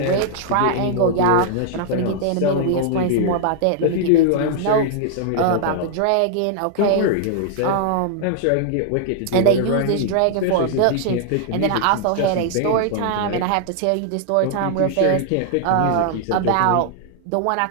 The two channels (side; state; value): both; different; correlation 0.00